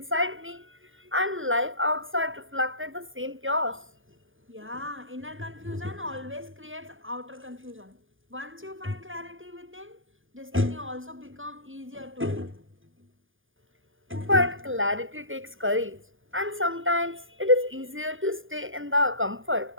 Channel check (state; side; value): late; left; 0.58 ms